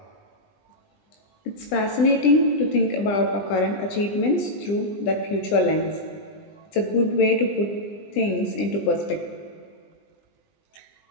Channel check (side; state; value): right; late; 20 ms